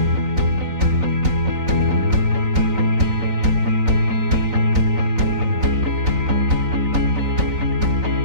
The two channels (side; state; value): left; late; 3.9 ms